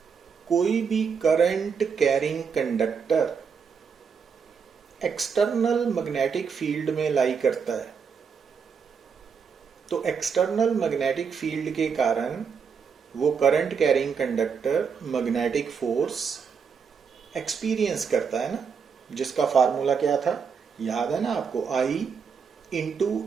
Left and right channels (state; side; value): quieter; left; 6.2 dB